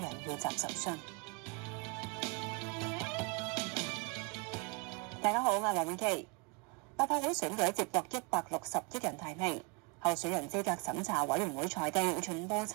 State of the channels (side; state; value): left; quieter; 30.2 dB